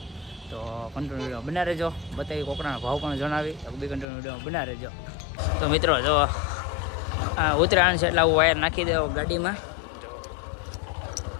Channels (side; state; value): right; drops out; at 4.0 s